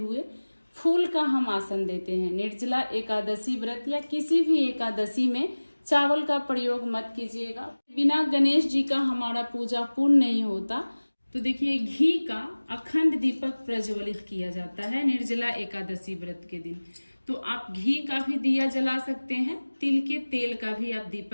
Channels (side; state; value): both; inverted; correlation -1.00